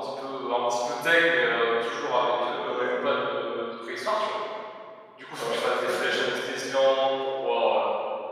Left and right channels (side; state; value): both; identical; correlation 1.00